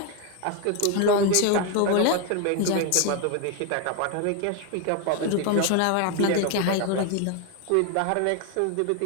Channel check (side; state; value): both; different; correlation 0.01